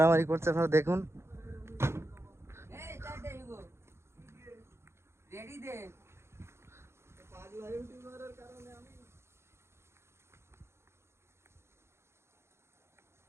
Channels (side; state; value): left; late; 0.13 ms